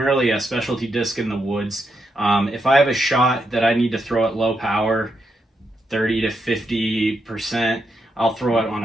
a specialty disc in the woods. If I have a shot that I need to throw at low power, 30 to 50%, I'll throw it on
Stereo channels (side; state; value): both; normal; correlation 0.82